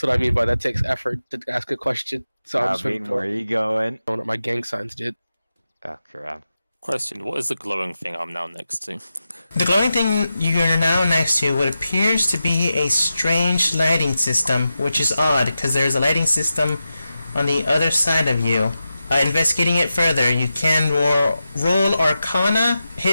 I mean by that takes effort to ask a question. So I'm just Where are you going? throwing up my gang signs, dude. Oh, crap. Question, what is the glowing thing I'm now next to? The glowing thing you're now next to what appears to be a strange lighting system, which is odd, because there's a lighting system on the other side of you. Investigating it further, you can roll Arcana,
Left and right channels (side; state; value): both; inverted; correlation -0.91